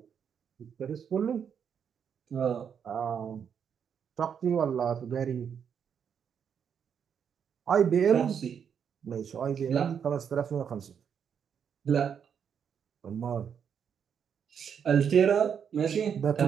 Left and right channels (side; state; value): left; quieter; 7.6 dB